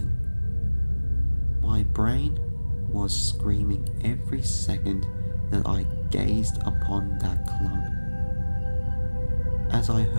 My brain was screaming every second that I gazed upon that clump. As I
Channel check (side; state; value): both; inverted; correlation -1.00